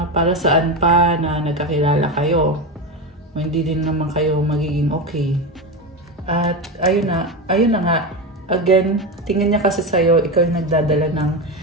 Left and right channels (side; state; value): both; normal; correlation 0.17